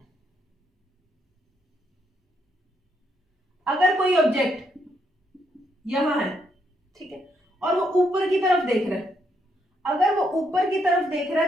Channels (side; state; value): both; normal; correlation 0.75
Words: अगर कोई ऑब्जेक्ट यहां है, ठीक है, और वो ऊपर की तरफ देख रहा है, अगर वो ऊपर की तरफ देख रहा